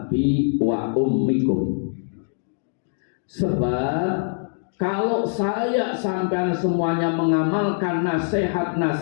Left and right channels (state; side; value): silent; right; digital silence